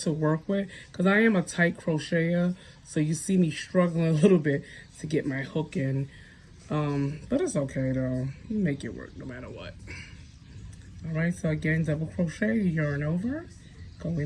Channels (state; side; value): identical; both; correlation 1.00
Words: work with because I am a tight crocheter, so you see me struggling a little bit to get my hook in, but it's okay though. You make it work no matter what. All right, so again, double crochet, yarn over, go